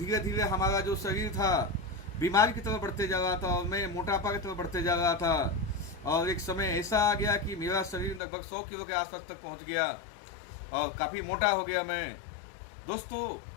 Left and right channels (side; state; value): right; drops out; at 8.2 s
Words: धीरे हमारा जो शरीर था बीमारी की तरफ बढ़ते जा रहा था और मैं मोटापा की तरफ बढ़ते जा रहा था। और एक समय ऐसा आ गया कि मेरा शरीर लगभग 100 किलो के आसपास तक पहुँच गया और काफ़ी मोटा हो गया मैं। दोस्तों,